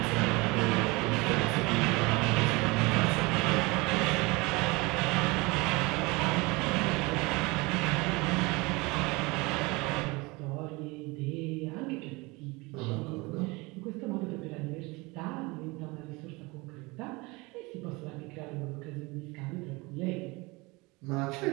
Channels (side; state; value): left; quieter; 24.7 dB